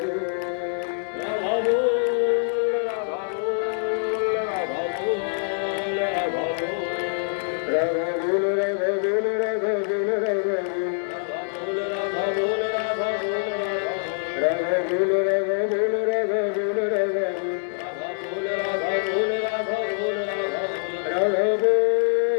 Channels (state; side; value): silent; right; digital silence